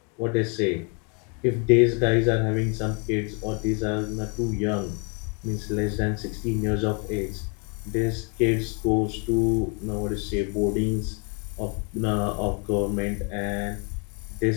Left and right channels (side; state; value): right; quieter; 36.4 dB